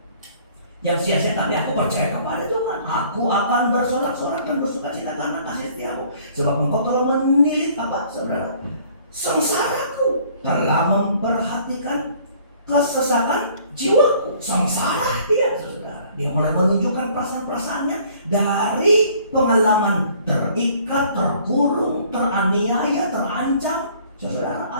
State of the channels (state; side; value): inverted; both; correlation -0.56